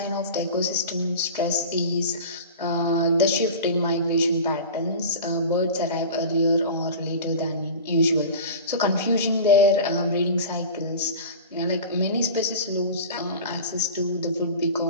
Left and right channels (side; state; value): both; inverted; correlation -0.33